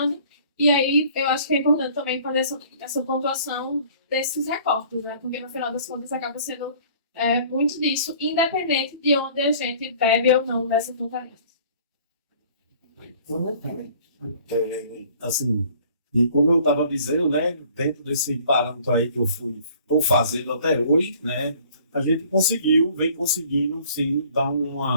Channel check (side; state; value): both; inverted; correlation -0.53